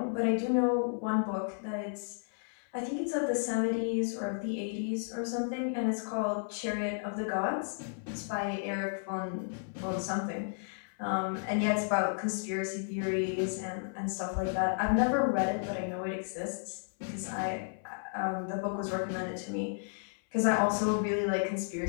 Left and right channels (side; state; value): right; silent; 56 dB below the other